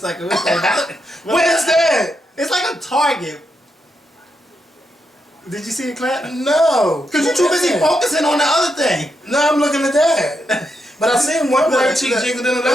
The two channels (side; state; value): both; normal; correlation 0.83